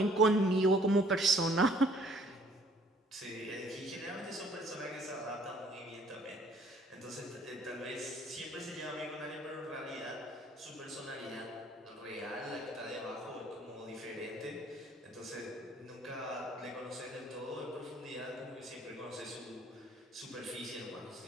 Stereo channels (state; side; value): normal; both; correlation 0.59